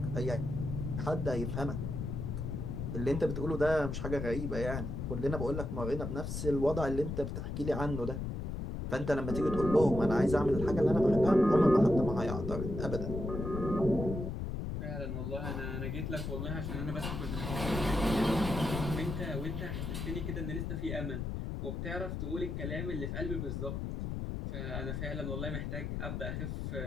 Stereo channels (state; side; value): noise; left; rumble, 4 dB below the sound